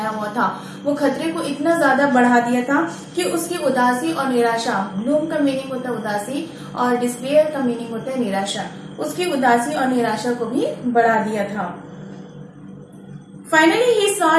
हुआ था वो खतरे को इतना ज्यादा बढ़ा दिया था कि उसकी उदासी और निराशा, ग्लूम का मीनिंग होता है उदासी और डिस्पेयर का मीनिंग होता है निराशा, उसकी उदासी और निराशा को भी बढ़ा दिया था। Finally, he saw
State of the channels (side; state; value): both; identical; correlation 1.00